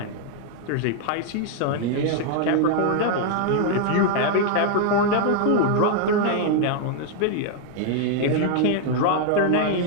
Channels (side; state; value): both; different; correlation 0.00